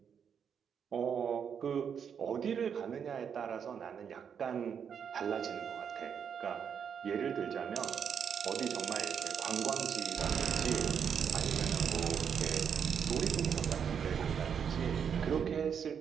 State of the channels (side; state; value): left; quieter; 7.5 dB